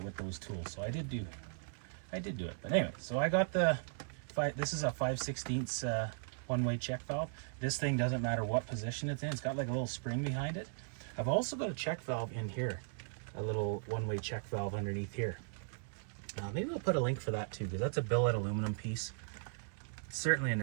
with those tools. So I did do it. But anyway, so I got this is a 5/16 one-way check valve. This thing doesn't matter what position it's in. It's got like a little spring behind it. I've also got a check valve in here, a little one-way check valve underneath here. Maybe I'll put a link for that too, because that's a billet aluminum piece. It's certainly a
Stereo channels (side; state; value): left; silent; 53 dB below the other